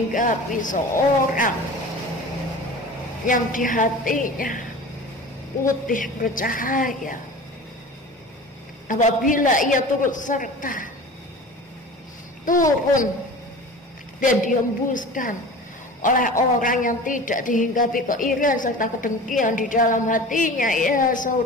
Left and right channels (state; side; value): normal; both; correlation 0.37